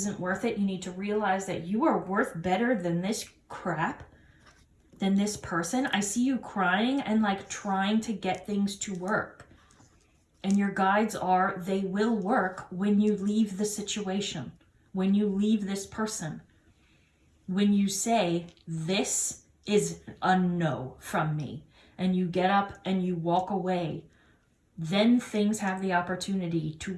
worth it. You need to realize that you are worth better than this crap, than this person. I see you crying and like trying to get things to work. And your guides are, they will work when you leave the situation, when you leave this person. When you say, this is a no from me, and you get up and you walk away, then things have the opportunity to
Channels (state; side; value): identical; both; correlation 1.00